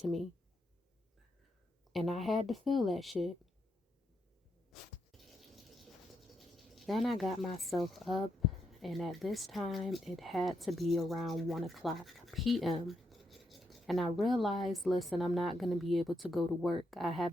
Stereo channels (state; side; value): normal; both; correlation 0.81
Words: me. And I had to feel that shit. Then I got myself up, and at this time it had to be around 1 o'clock p.m. And I realized, listen, I'm not going to be able to go to work. I